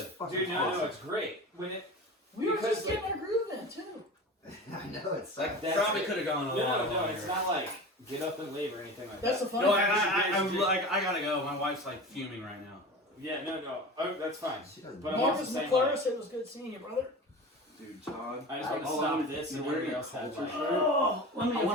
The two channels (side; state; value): both; normal; correlation 0.33